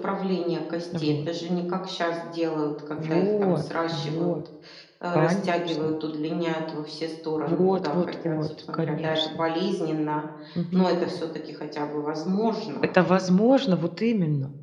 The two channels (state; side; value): identical; both; correlation 1.00